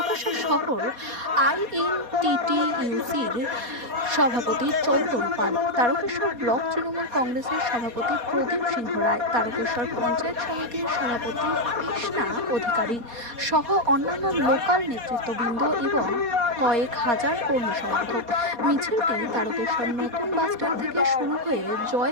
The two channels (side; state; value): left; late; 4.2 ms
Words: শহর আইএনটিটিইউসির সভাপতি চন্দন পাল, তারকেশ্বর ব্লক তৃণমূল কংগ্রেসের সভাপতি প্রদীপ সিংহ রায়, তারকেশ্বর পঞ্চায়েত সমিতির সভাপতি কৃষ্ণা অধিকারী সহ অন্যান্য লোকাল নেতৃত্ববৃন্দ এবং কয়েক হাজার কর্মী সমর্থক। মিছিলটি তারকেশ্বর নতুন বাসস্ট্যান্ড থেকে শুরু হয়ে